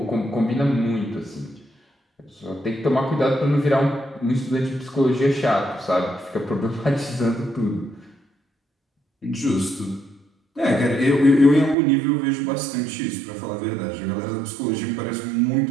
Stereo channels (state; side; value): drops out; left; at 11.8 s